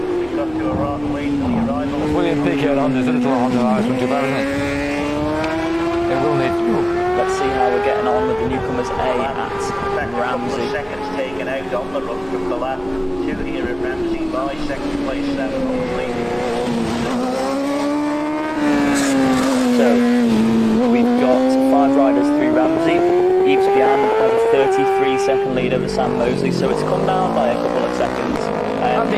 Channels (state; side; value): noise; right; rumble, 22 dB below the sound